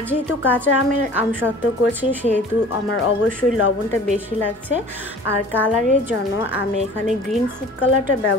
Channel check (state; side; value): normal; both; correlation 0.45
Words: যেহেতু কাঁচা আমের আমসত্ত্ব করছি সেহেতু আমার অবশ্যই লবণটা বেশি লাগছে। আর কালারের জন্য আমি এখানে গ্রিন ফুড কালারটা